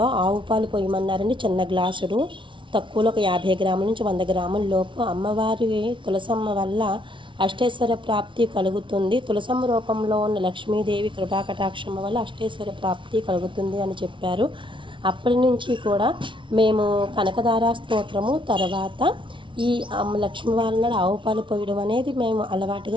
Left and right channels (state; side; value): late; left; 0.24 ms